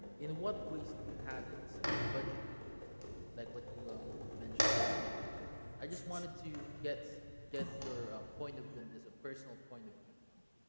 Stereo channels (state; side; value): inverted; both; correlation -1.00